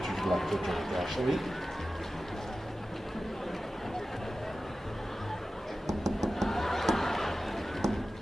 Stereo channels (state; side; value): normal; both; correlation 0.94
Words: you'd like to drink, Ashley?